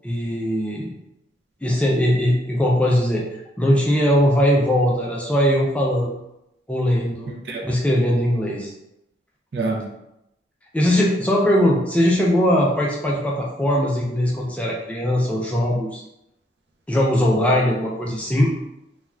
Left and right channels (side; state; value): both; normal; correlation 0.72